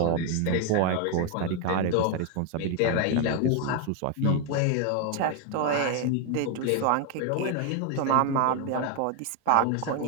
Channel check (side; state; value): both; different; correlation 0.01